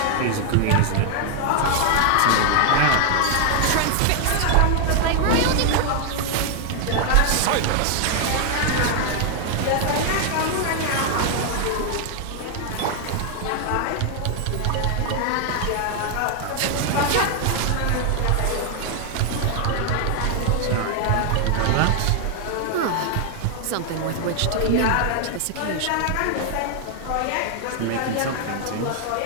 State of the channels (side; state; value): both; different; correlation 0.00